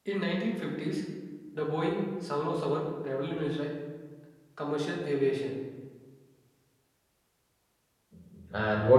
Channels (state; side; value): identical; both; correlation 1.00